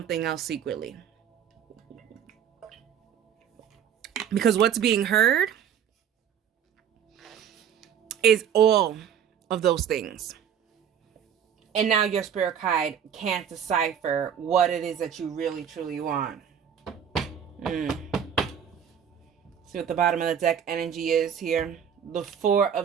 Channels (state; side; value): quieter; left; 8.5 dB